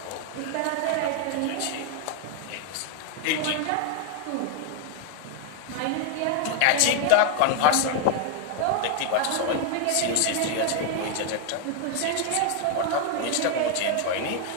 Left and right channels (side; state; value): both; different; correlation 0.00